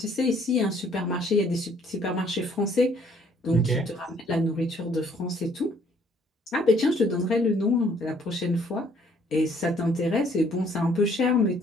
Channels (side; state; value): both; normal; correlation 0.63